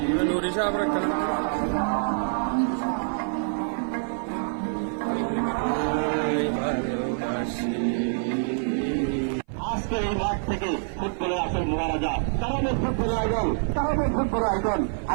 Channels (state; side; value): silent; left; 56 dB below the other